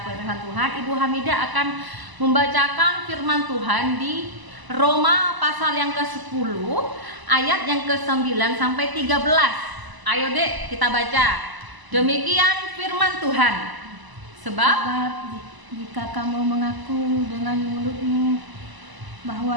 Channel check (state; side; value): late; left; 1.0 ms